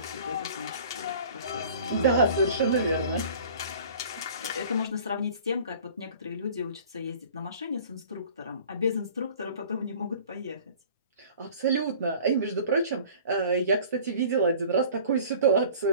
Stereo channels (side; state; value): both; inverted; correlation -0.46